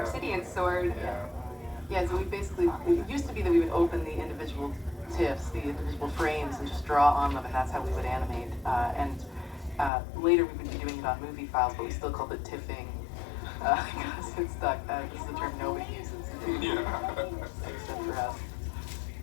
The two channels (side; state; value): right; drops out; at 9.9 s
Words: sword. Yeah, so it used to be that we would open the individual TIFFs, the individual frames, and just draw on them, and that's how we would animate. Later we would be doing it on movie files, but we still called it tiffing, because it stuck. This is a term nobody uses. Except for us.